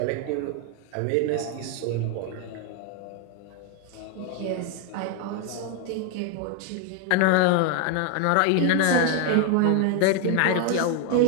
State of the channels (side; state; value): both; different; correlation 0.01